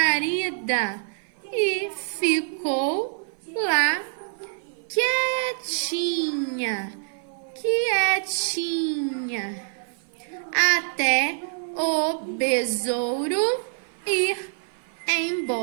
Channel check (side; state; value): left; silent; 55 dB below the other